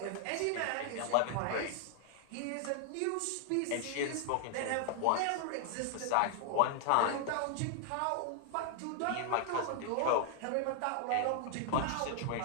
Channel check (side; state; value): both; different; correlation 0.00